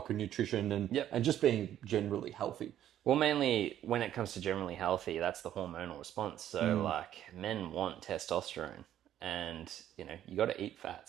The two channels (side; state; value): left; quieter; 11.4 dB